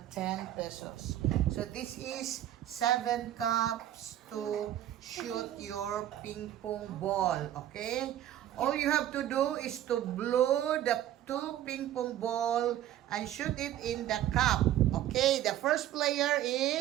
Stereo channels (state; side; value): quieter; left; 12.3 dB